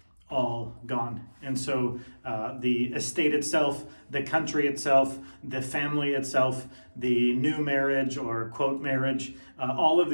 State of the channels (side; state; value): both; inverted; correlation -1.00